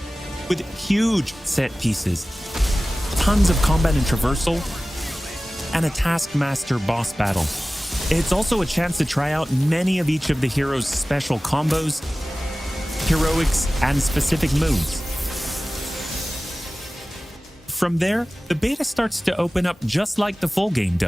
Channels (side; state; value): both; normal; correlation 0.97